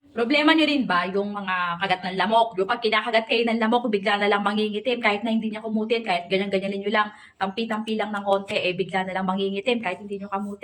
Problema nyo rin ba yung mga kagat ng lamok? Yung pag kinakagat kayo ng lamok, bigla na lang mangingitim kahit na hindi niya kumutin, kahit ganyan-ganyanin nyo lang, tampi-tampi lang ng konti, bigla na lang mangingitim kahit hindi nyo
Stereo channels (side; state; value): both; identical; correlation 1.00